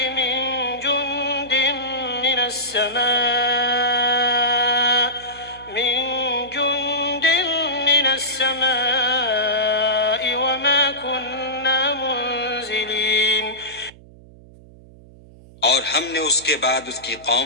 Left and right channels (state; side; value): noise; right; hum, 22 dB below the sound